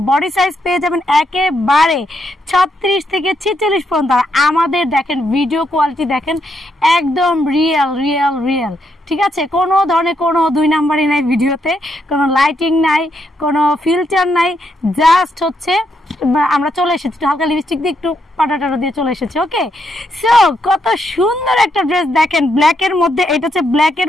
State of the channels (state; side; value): normal; both; correlation 0.78